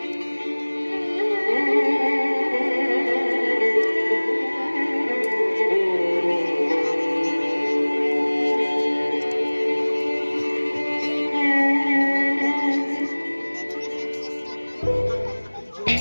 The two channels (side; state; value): both; inverted; correlation -1.00